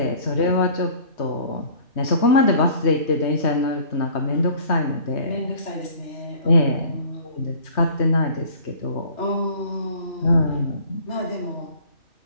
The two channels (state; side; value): late; right; 3.2 ms